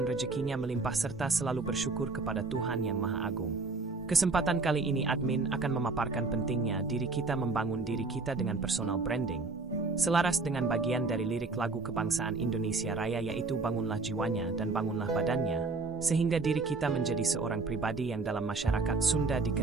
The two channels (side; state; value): left; quieter; 3.8 dB